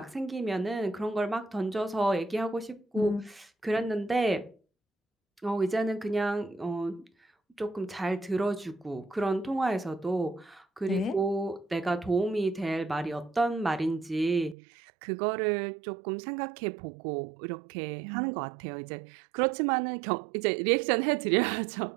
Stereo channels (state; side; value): drops out; left; at 14.6 s